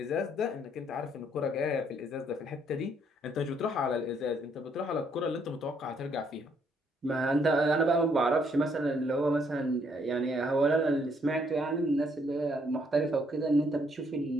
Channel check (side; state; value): both; normal; correlation 0.69